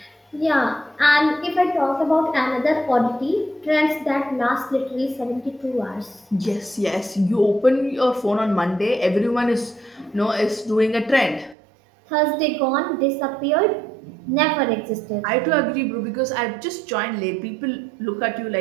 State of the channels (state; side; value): drops out; left; at 11.6 s